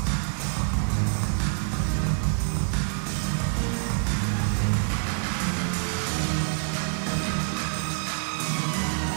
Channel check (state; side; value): silent; left; 56 dB below the other